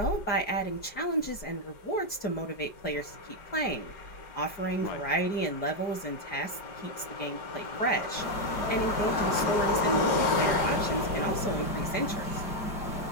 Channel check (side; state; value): right; late; 4.8 ms